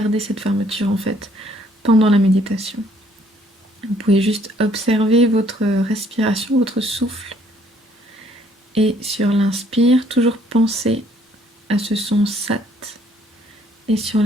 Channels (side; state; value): both; normal; correlation 0.64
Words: cette fermeture en fait pendant la méditation. Vous pouvez juste observer votre respiration, votre souffle, et sur l'inspire, toujours penser à ce son sat, et sur